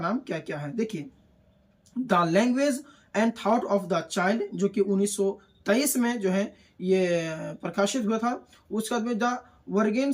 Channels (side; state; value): both; identical; correlation 1.00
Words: क्या क्या है। देखिए, the language and thought of the child जो कि 1923 में जो है ये प्रकाशित हुआ था। उसके बाद में the